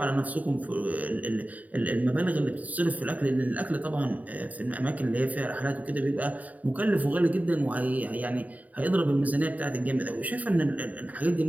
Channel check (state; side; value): late; left; 0.073 ms